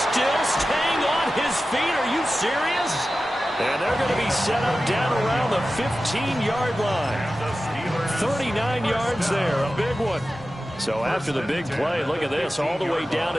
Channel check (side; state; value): both; normal; correlation 0.94